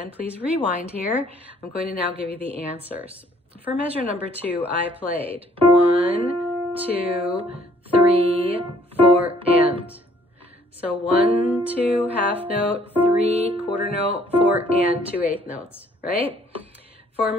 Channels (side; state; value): both; normal; correlation 0.62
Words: please rewind here. I'm going to now give you the answers. For measure number 2, I played 1, 2, 3, 4, and. So 1, 2, half note, 3, quarter note, 4, and 2 eighth notes, right? For